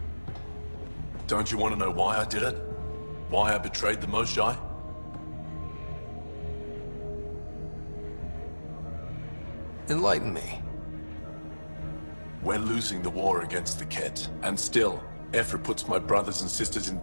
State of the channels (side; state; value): both; inverted; correlation -1.00